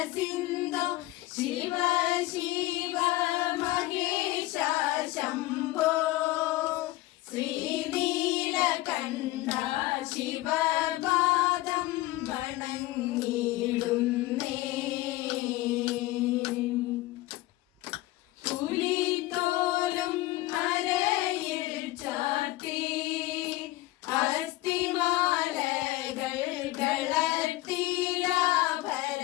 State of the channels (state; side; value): quieter; right; 17.9 dB